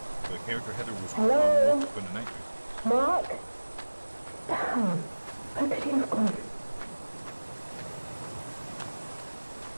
the character Heather was Hello? up in a nightmare. Mark? Damn, where could he have gone?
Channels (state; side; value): inverted; both; correlation -1.00